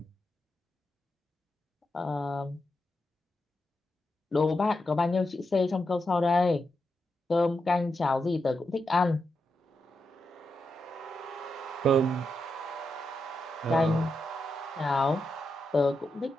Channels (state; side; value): normal; both; correlation 0.86